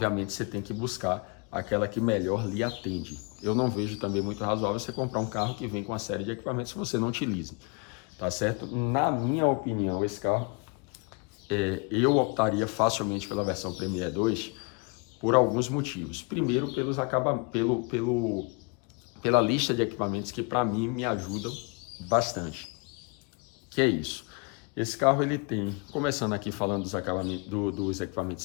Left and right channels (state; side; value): quieter; right; 32.6 dB